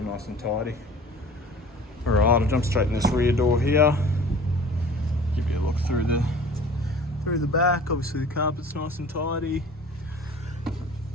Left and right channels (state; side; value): normal; both; correlation 0.45